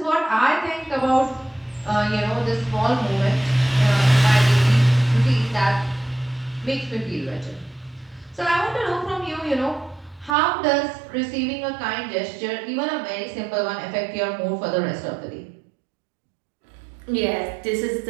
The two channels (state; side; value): drops out; left; at 10.4 s